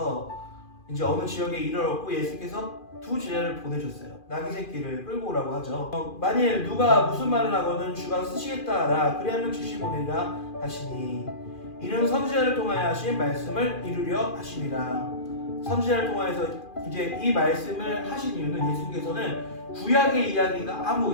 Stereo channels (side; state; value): right; late; 2.4 ms